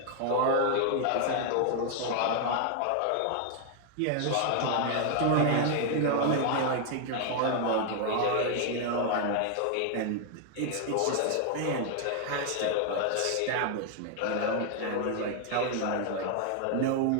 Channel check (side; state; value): both; different; correlation 0.00